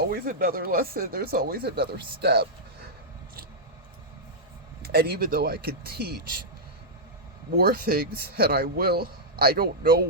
another lesson. There's always another step. And even though I can teach more things, and I will, I don't know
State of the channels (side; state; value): both; normal; correlation -0.08